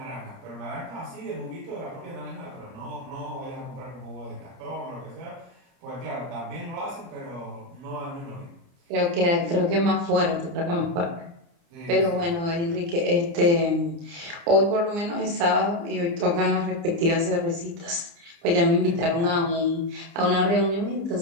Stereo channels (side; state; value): left; late; 29 ms